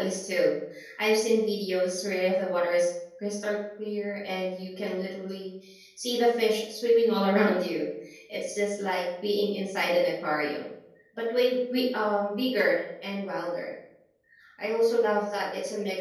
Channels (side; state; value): both; identical; correlation 1.00